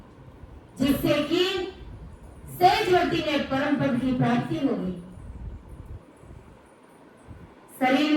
जिससे कि सहजवती में परम पद की प्राप्ति हो गई। शरीर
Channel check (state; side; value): identical; both; correlation 1.00